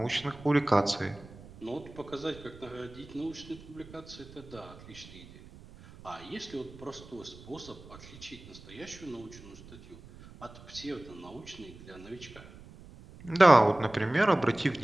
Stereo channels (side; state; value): right; noise; rumble, 19 dB below the sound